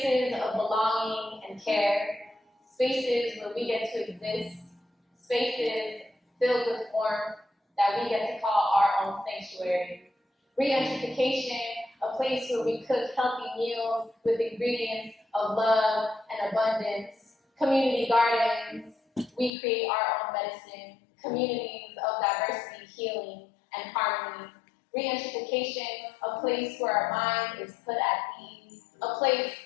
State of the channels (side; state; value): right; drops out; at 19.5 s